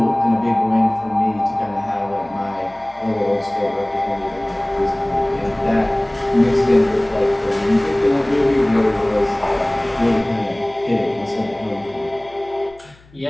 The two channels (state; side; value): noise; left; hum, 27 dB below the sound